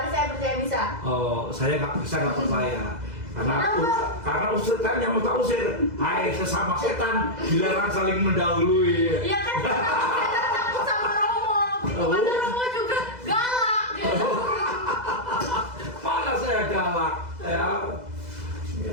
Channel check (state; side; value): late; left; 2.0 ms